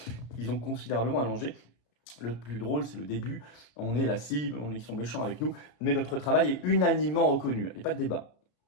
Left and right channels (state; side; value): late; right; 34 ms